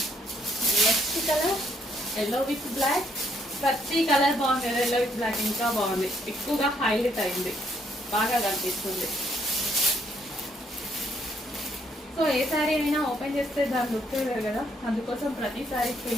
Next colour yellow with black. ప్రతి కలర్ బాగుంది కదా, ఎల్లో విత్ బ్లాక్ ఇంకా బాగుంది, ఎక్కువగా హైలైట్ అయింది, బాగా కనిపిస్తుంది. సో ఏ శారీ అయినా ఓపెన్ చేస్తే దాని లుక్ వేరు కదా, అందుకోసం ప్రతి శారీ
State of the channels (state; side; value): normal; both; correlation 0.70